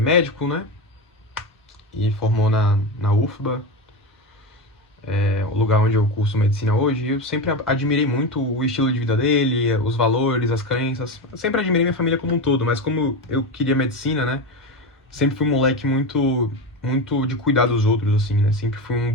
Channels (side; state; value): both; normal; correlation 0.19